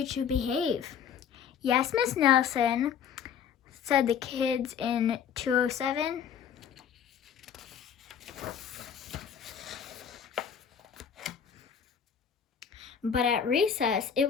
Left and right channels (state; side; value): quieter; right; 7.9 dB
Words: to behave." "Yes, Miss Nelson," said the kids in 207. But at recess, it